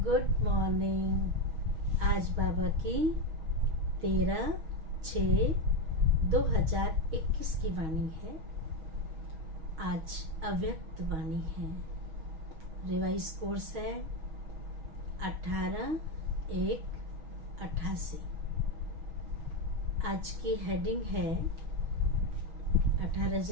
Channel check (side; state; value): left; late; 6.3 ms